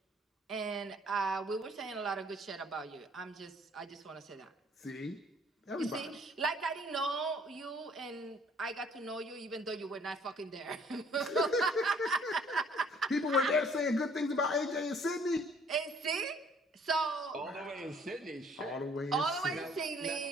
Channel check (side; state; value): both; normal; correlation 0.59